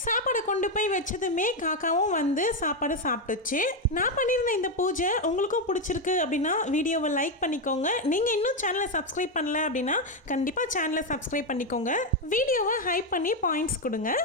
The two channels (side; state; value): both; normal; correlation 0.06